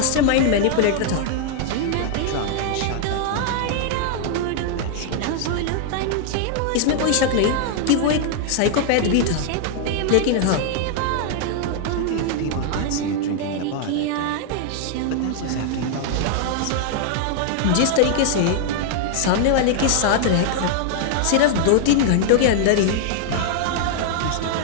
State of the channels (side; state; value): both; different; correlation 0.00